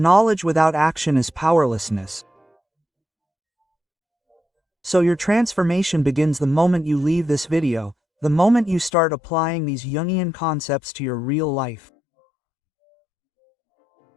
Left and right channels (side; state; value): right; drops out; at 8.9 s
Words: without action is powerlessness. So your transformation begins the moment you leave this video, the moment you start applying these Jungian concepts to your real life.